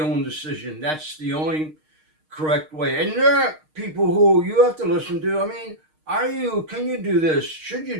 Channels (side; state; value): left; late; 6.5 ms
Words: own decision. That's the only correct way. And there are people who you have to listen to. I mean, can you do this? Should you